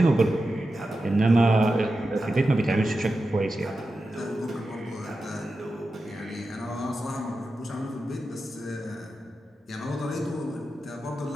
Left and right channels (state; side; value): normal; both; correlation 0.91